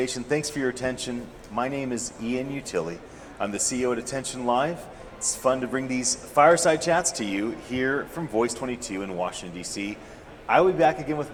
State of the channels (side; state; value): both; identical; correlation 1.00